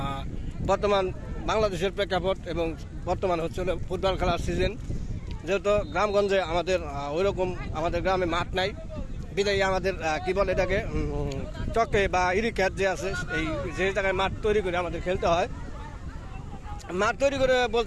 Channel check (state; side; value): identical; both; correlation 1.00